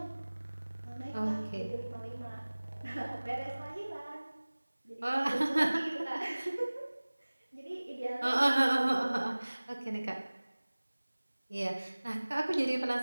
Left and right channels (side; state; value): both; inverted; correlation -1.00